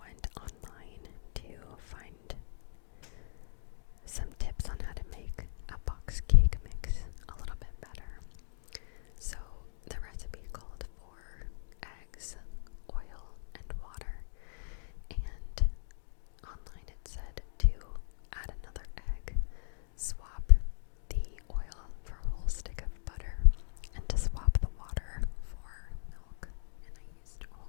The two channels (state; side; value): silent; right; digital silence